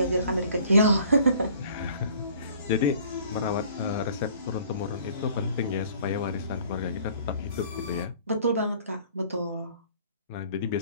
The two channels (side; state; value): both; inverted; correlation -0.54